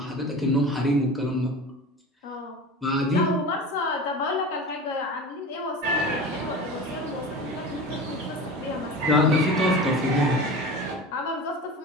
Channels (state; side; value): normal; both; correlation 0.32